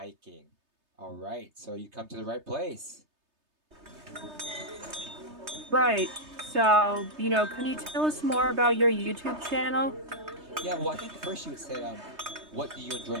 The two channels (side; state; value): left; late; 3.3 ms